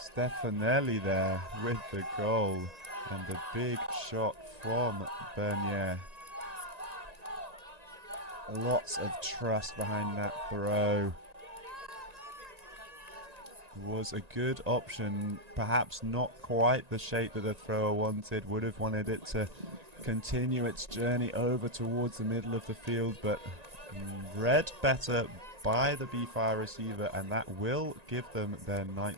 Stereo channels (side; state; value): left; late; 1.9 ms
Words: Stefanelli there with the goal, and a big shot from Bernier. Lots of trust behind that throw. Was a good option, perhaps not quite the shape that the thrower wanted. Would have wanted it to continue its journey over towards the middle of the field, but read better by the BeeFire receiver, and that will give them their